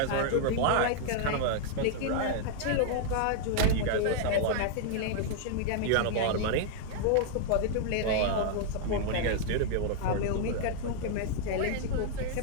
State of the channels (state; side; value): different; both; correlation -0.01